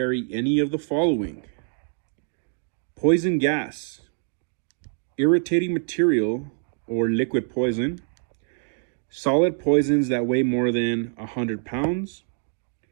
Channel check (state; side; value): silent; left; 62 dB below the other